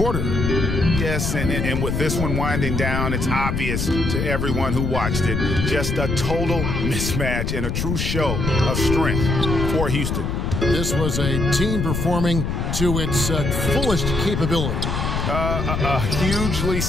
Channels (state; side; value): noise; left; rumble, 1 dB below the sound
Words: Yes, and with this one winding down, it's obvious to everyone who watched it. Just a total mismatch and a true show of strength for Houston. This was a team performing to its fullest capability. A hugely